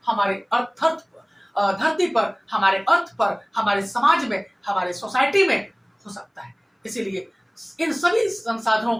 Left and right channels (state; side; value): identical; both; correlation 1.00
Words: हमारे धरती पर, हमारे अर्थ पर, हमारे समाज में, हमारे सोसाइटी में हो सकता है। इसीलिए इन सभी संसाधनों